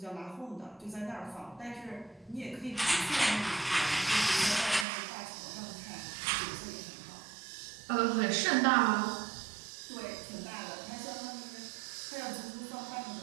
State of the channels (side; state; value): left; drops out; at 4.9 s